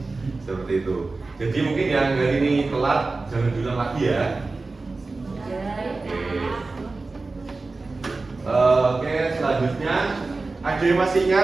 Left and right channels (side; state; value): left; quieter; 3.6 dB